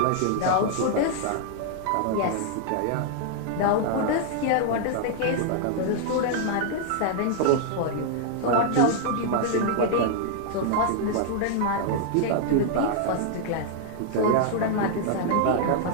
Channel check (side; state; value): both; different; correlation -0.01